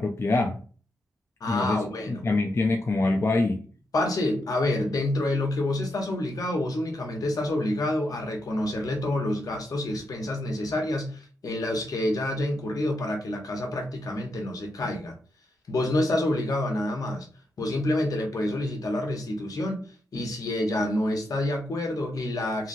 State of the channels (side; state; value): both; normal; correlation 0.83